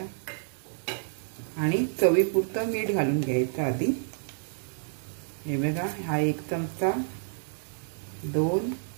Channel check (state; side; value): silent; left; digital silence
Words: आणि चवीपुरतं मीठ घालून घ्यायचं आधी. हे बघा, हा 1 चमचा, 2